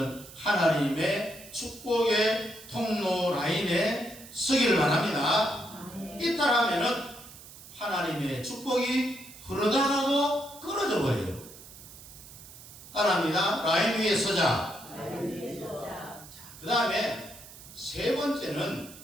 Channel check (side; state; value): right; noise; hiss, 17 dB below the sound